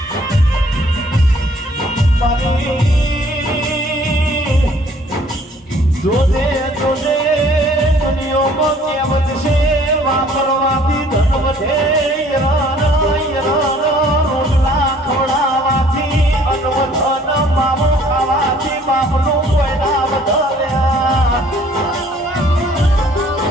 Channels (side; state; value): both; normal; correlation 0.57